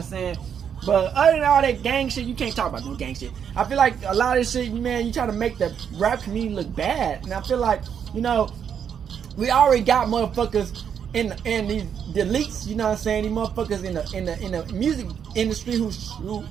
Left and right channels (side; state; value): left; quieter; 8.0 dB